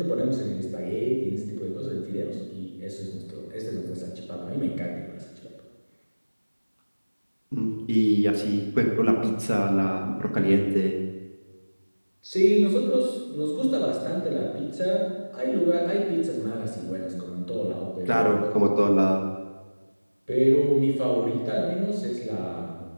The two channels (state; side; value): inverted; both; correlation -1.00